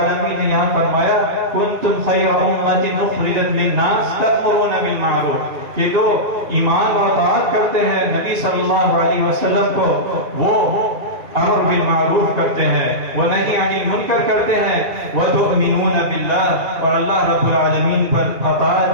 نے یہاں فرمایا کنتم خیر امت اخرجت للناس تأمرون بالمعروف، کہ جو ایمان و اطاعت کرتے ہیں نبی صلی اللہ علیہ وسلم کو، وہ امر بالمعروف کرتے ہیں، وہ نہی عن المنکر کرتے ہیں، وتؤمنون باللہ، اور اللہ رب العالمین پر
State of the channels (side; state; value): left; late; 2.4 ms